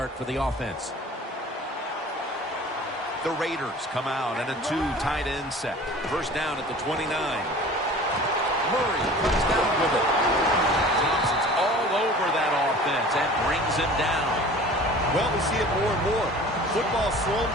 for the offense. The Raiders come out in a two tight end set. First down at the 29. Murray comes down with it. Thompson's all over that offense and brings him down. Well, we see it more and more. Football thrown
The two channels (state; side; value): normal; both; correlation 0.43